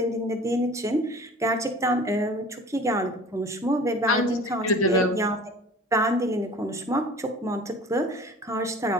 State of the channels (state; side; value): normal; both; correlation 0.44